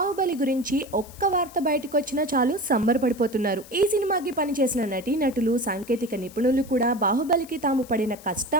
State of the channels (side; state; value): left; noise; hiss, 20 dB below the sound